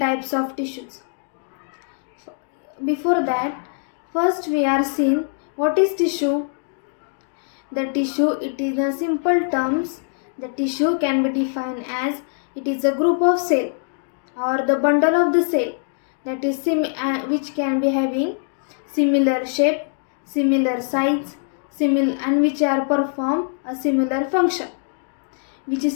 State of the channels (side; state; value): right; silent; 60 dB below the other